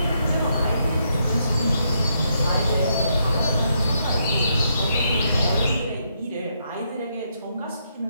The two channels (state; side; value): inverted; both; correlation -0.77